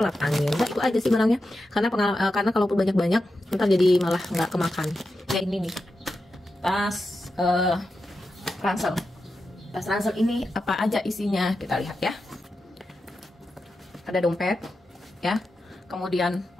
angin. Nah, itu aja sih barangnya. Karena kalaupun banyak-banyak, ntar jadi malah nggak kemakan. Ya ini nih, tas ransel. Tas ransel ini apa aja isinya? Kita lihat ya. Ada dompet, ya. Kemudian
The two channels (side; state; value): both; normal; correlation 0.89